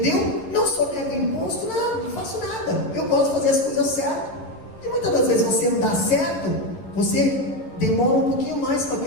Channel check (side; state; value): right; late; 11 ms